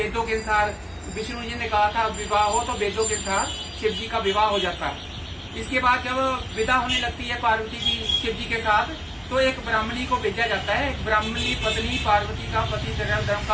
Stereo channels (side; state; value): both; identical; correlation 1.00